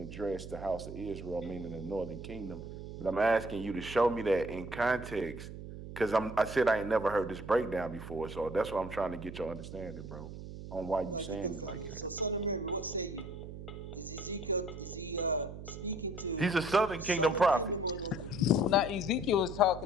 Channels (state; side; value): noise; right; hum, 11 dB below the sound